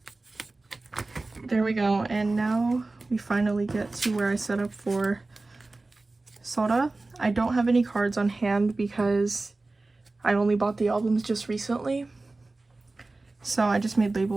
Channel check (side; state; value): left; quieter; 3.3 dB